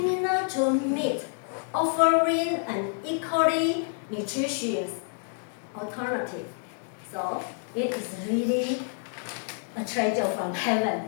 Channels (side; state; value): right; silent; 57 dB below the other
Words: to meat, offering an equally nutritious alternative. So it is really a treasure from